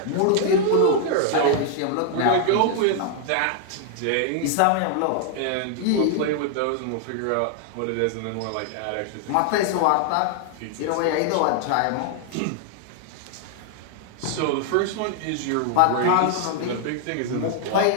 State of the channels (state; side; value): different; both; correlation 0.00